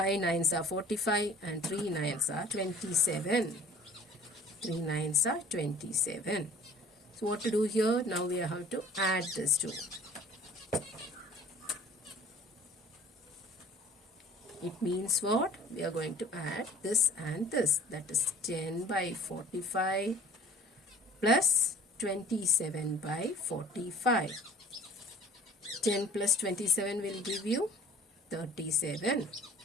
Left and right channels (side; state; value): both; normal; correlation 0.49